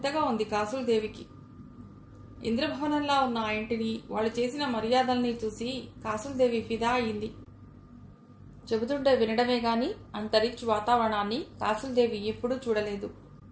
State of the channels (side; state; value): both; identical; correlation 1.00